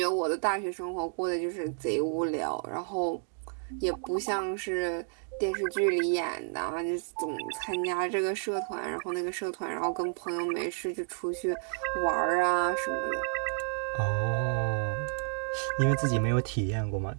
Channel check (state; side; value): silent; left; 57 dB below the other